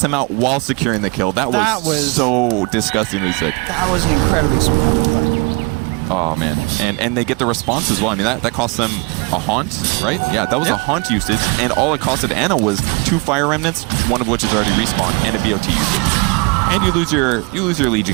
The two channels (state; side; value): quieter; left; 29.9 dB